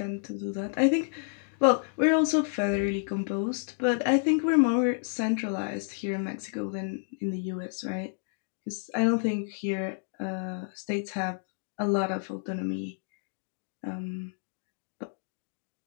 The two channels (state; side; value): silent; right; digital silence